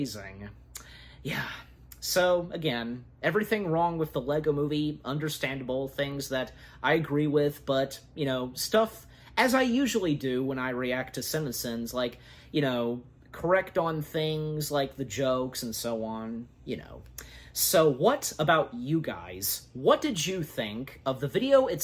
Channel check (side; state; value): both; identical; correlation 1.00